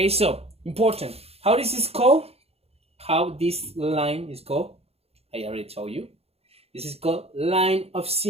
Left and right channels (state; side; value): late; left; 0.29 ms